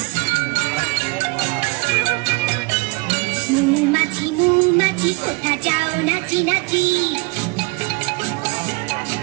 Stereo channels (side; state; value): left; quieter; 29.6 dB